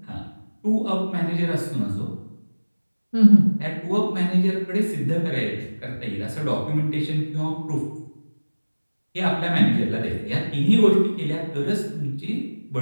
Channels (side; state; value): both; inverted; correlation -1.00